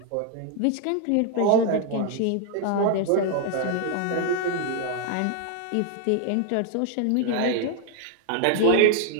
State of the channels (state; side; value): different; both; correlation 0.00